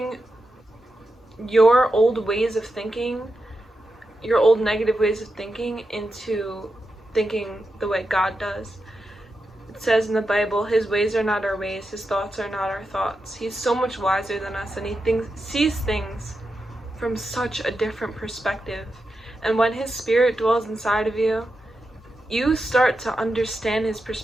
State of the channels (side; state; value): both; normal; correlation 0.88